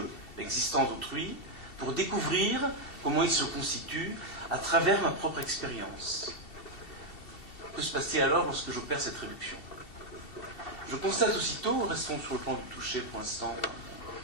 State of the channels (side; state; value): right; late; 2.7 ms